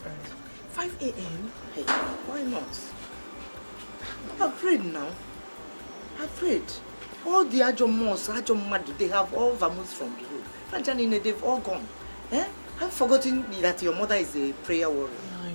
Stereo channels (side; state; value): both; inverted; correlation -1.00